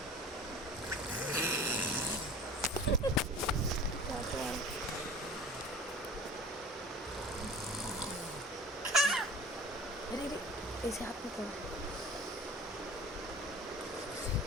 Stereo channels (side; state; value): both; normal; correlation 0.41